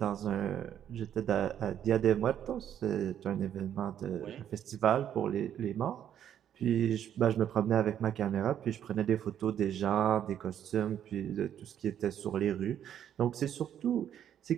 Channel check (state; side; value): quieter; left; 9.9 dB